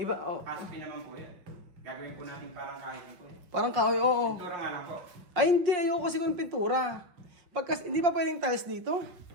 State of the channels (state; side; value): late; left; 5.6 ms